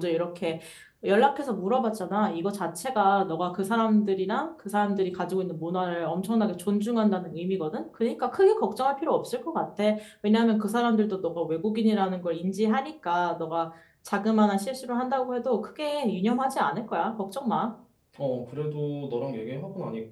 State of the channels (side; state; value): both; identical; correlation 1.00